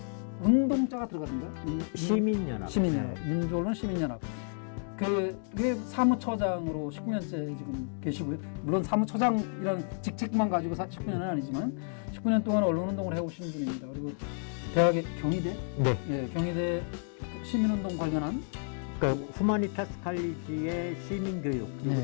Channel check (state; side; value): silent; right; 57 dB below the other